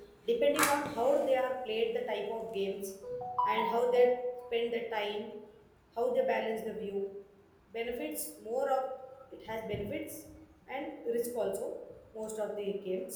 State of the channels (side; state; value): both; identical; correlation 1.00